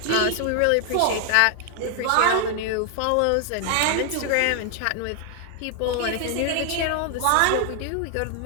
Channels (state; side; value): different; both; correlation 0.00